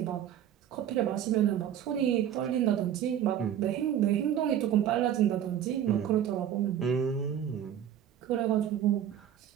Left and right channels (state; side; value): quieter; left; 10.1 dB